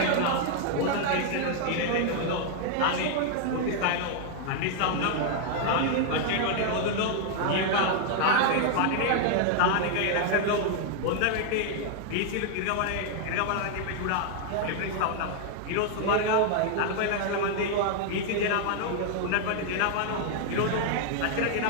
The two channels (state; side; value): different; both; correlation 0.00